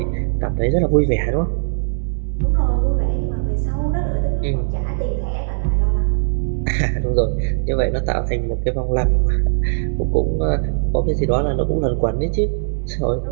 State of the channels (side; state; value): left; silent; digital silence